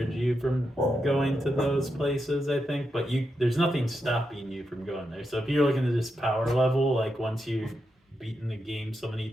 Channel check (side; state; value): both; normal; correlation 0.85